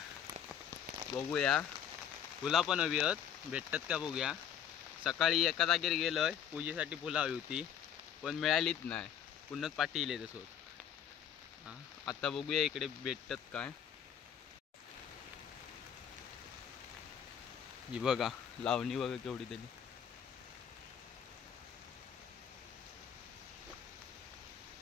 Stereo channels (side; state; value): right; quieter; 9.0 dB